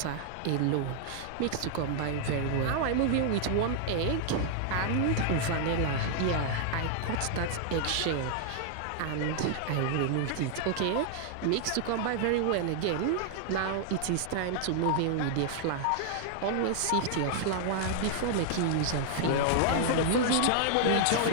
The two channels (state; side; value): different; both; correlation -0.01